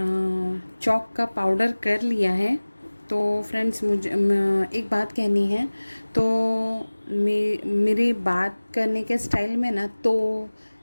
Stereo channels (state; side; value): inverted; both; correlation -1.00